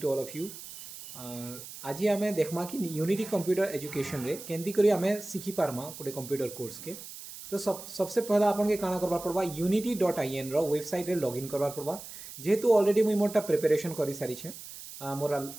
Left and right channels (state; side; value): noise; right; hiss, 13 dB below the sound